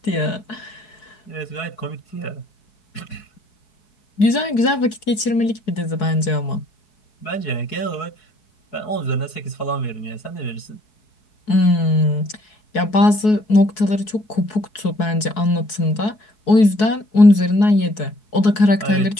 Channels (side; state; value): right; late; 4.7 ms